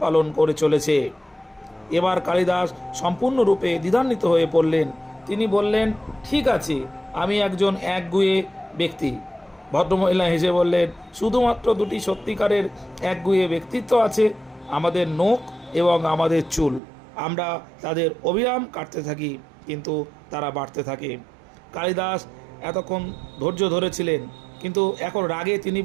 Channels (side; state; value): left; drops out; at 16.8 s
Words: পালন করে চলেছে। এবার কালিদাস সম্পূর্ণরূপে দ্বিধান্বিত হয়ে পড়লেন। তিনি বললেন, ঠিক আছে, আমি একজন একগুঁয়ে ব্যক্তি। ভদ্রমহিলা হেসে বললেন, শুধুমাত্র দুটি সত্যিকারের একগুঁয়ে ব্যক্তিত্ব আছে, আমাদের নখ এবং আমাদের চুল। আমরা তাদের অবিরাম কাটতে থাকি, কিন্তু তারা বাড়তে থাকে। কালিদাস এতক্ষণ ধৈর্য ধরেছিলেন, কিন্তু এখন রাগে তিনি